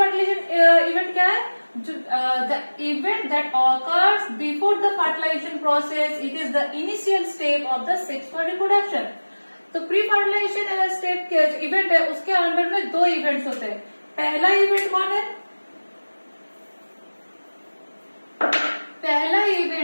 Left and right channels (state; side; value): inverted; both; correlation -1.00